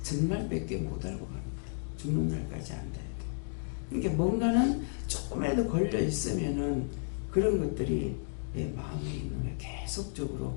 정말 몇 개 못 알고 갑니다. 죽는 날까지 안다 해도. 그러니까 뭔가는 조금이라도 걸려 있으면은 그런 것들이 내 마음에 있는 거예요. 계속적으로.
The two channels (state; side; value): silent; right; digital silence